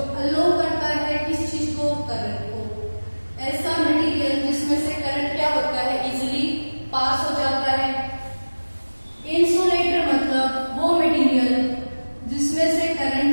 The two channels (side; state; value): both; inverted; correlation -1.00